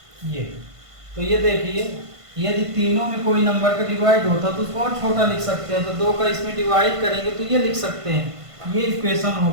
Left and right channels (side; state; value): left; late; 1.5 ms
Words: ये तो ये देखिए, यदि तीनों में कोई नंबर का डिवाइड होता तो उसको और छोटा लिख सकते हैं, तो 2 का इसमें डिवाइड करेंगे तो ये लिख सकते हैं। ये इक्वेशन हो